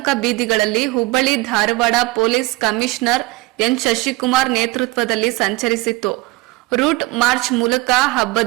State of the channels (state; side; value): quieter; left; 21.3 dB